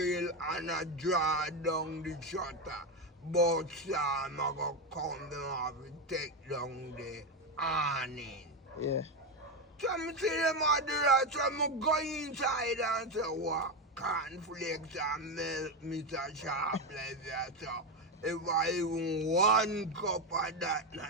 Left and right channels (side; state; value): both; normal; correlation 0.11